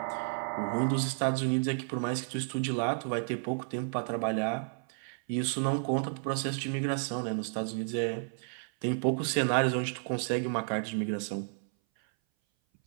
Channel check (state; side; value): silent; left; 56 dB below the other